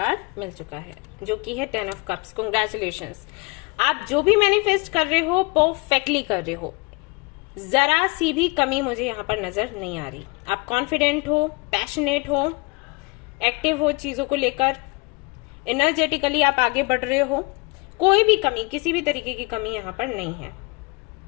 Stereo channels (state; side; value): quieter; right; 28.7 dB